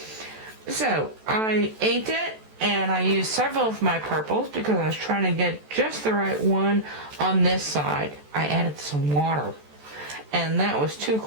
So I inked it. And I used several of my purples because I was trying to get just the right one on this side. I added some water. And that was too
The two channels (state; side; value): late; left; 14 ms